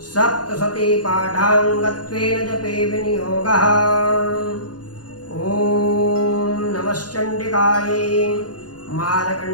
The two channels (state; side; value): late; right; 0.69 ms